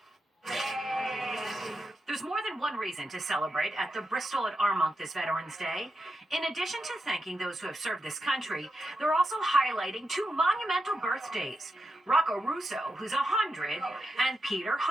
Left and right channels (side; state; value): both; normal; correlation 0.87